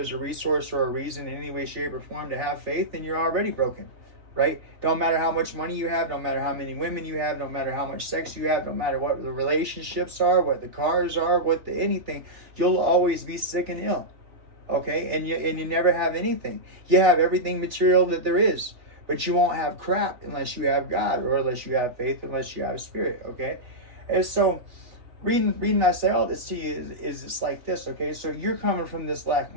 a resource or a reason in any way, shape, or form to have faith, then you're already broken, right? Don't matter how much money you have, don't matter how many women you have, don't matter how much sex you have, don't matter what the relationships are, what the cars are, what the anything, you'll always be sick and ill, okay? And you never have anything. You have everything material that there is, but you won't have crap unless you have God, or unless you have faith, unless you have Spirit, okay? And so, reading I say all this to you is it's like this, okay? So you're coming from this lack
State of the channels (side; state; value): left; late; 3.8 ms